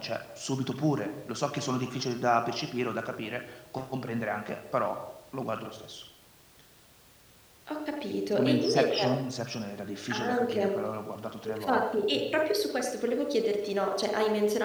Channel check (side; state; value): both; identical; correlation 1.00